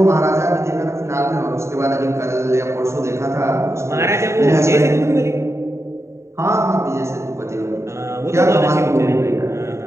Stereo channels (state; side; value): late; left; 0.14 ms